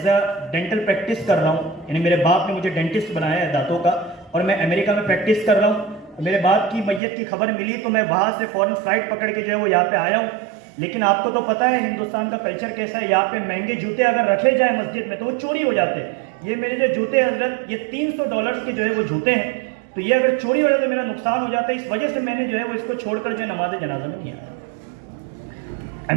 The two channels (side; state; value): left; drops out; at 7.0 s